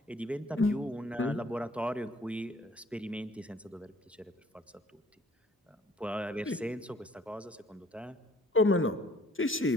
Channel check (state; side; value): normal; both; correlation 0.58